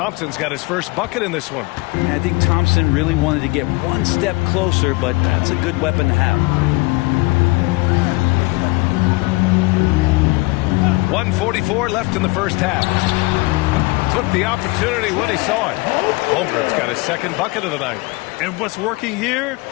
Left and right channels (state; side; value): quieter; right; 24.4 dB